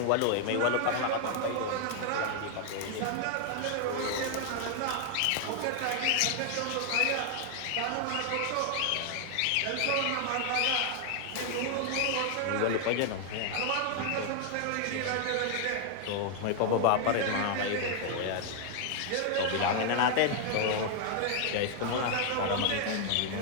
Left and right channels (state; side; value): different; both; correlation 0.00